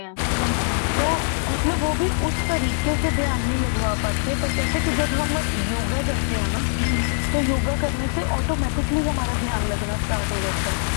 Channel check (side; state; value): right; silent; 55 dB below the other